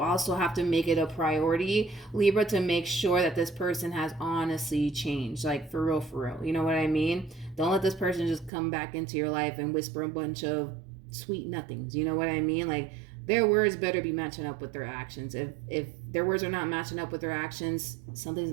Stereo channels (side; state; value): left; drops out; at 8.5 s